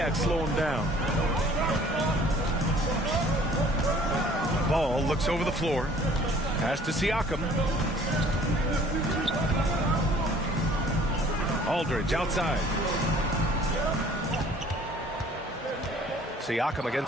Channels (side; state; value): both; normal; correlation 0.53